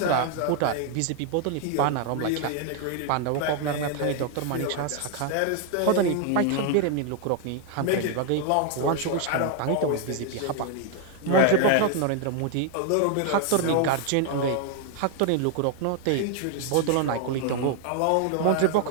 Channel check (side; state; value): both; different; correlation 0.00